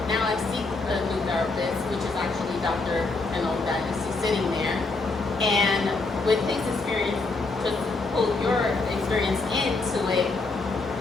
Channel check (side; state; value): right; quieter; 3.6 dB